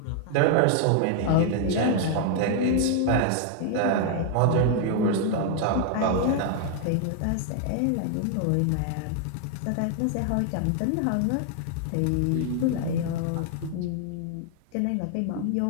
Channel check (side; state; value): both; different; correlation 0.00